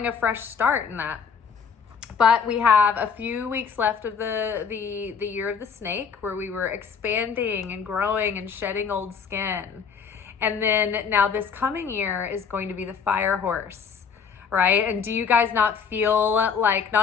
a fresh start in that. But we have a few weeks left of the year of the snake, where we were expanding and growing and shedding old skin. And then now this coming year is going to be the fire horse, right? And do you guys not feel like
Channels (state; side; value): quieter; right; 6.2 dB